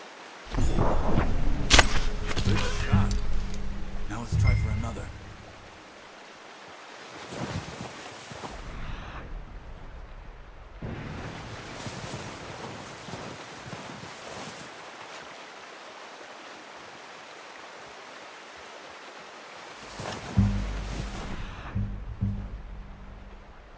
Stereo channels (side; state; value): both; identical; correlation 1.00